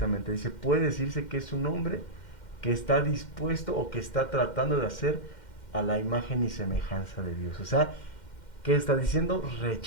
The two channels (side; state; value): right; late; 2.1 ms